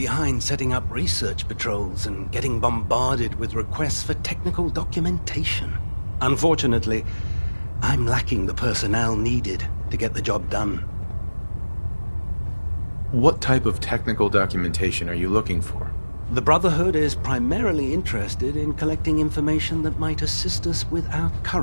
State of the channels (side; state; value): both; inverted; correlation -1.00